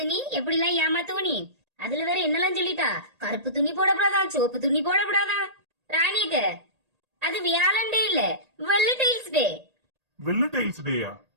நீ எப்படிலாம் ஏமாத்துவ நீ. அதுல வேற என்னெல்லாம் சொல்லிட்டா. கருப்பு துணி போடப்படாதான், சிவப்பு துணி போடப்படாதான். ராணிக்கு அது வியாழண்டே இல்ல, வெள்ளை டைல்ஸ் டே. வெள்ள டைல்ஸ் டேயா?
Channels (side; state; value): left; late; 1.8 ms